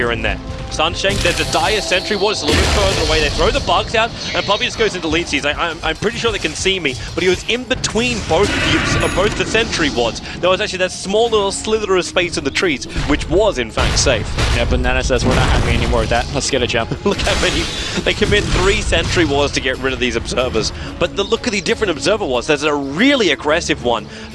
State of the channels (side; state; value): both; identical; correlation 1.00